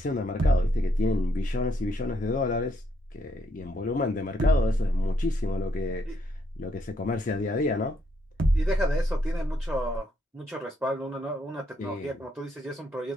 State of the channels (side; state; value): both; normal; correlation 0.74